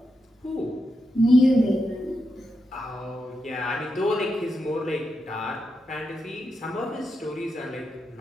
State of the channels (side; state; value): both; normal; correlation 0.86